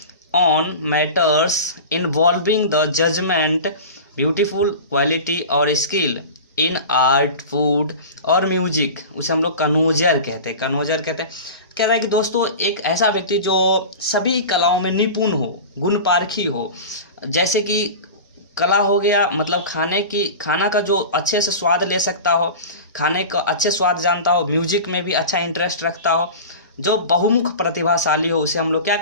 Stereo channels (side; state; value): both; inverted; correlation -0.32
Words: on matters involving the judgement beautiful quality और स्किल इन आर्ट फूड और म्यूजिक, उसे हम लोग कनोजर कहते हैं। कह रहा है कि दोस्तों एक ऐसा व्यक्ति जो सभी कलाओं में निपुण हो, गुण पारखी हो, जैसे कि कला हो गया, मतलब खाना का जो अच्छे से स्वाद ले सकता हो, खाने का अच्छे स्वाद जानता हो, म्यूजिक में भी अच्छा इंटरेस्ट रखता हो, जो बहुमुख प्रतिभाशाली हो, उसे हम लोग क्या